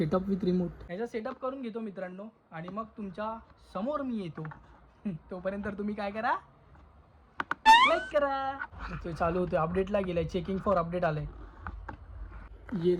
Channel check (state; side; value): identical; both; correlation 1.00